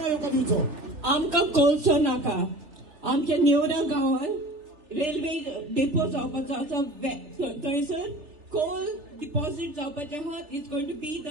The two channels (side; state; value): left; late; 3.4 ms